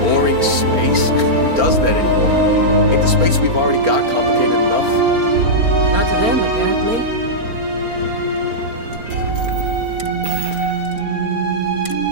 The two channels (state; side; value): late; left; 4.3 ms